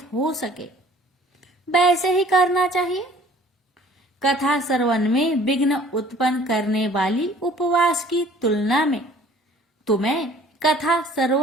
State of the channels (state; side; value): normal; both; correlation 0.53